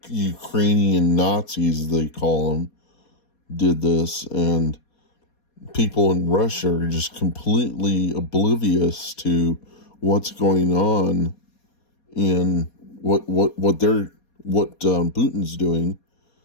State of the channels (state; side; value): late; right; 4.2 ms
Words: Ukrainian Nazis, they call them, did this, and people in Russia are just completely oblivious to what's going on in what Putin's doing.